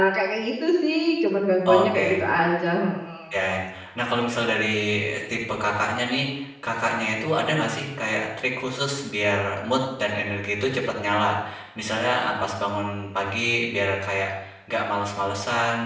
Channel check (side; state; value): both; identical; correlation 1.00